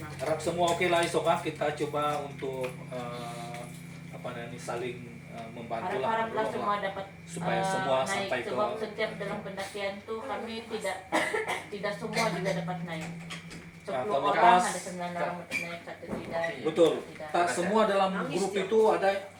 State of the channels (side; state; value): both; identical; correlation 1.00